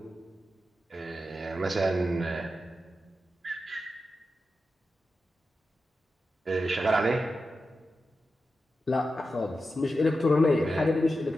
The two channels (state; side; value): normal; both; correlation 0.90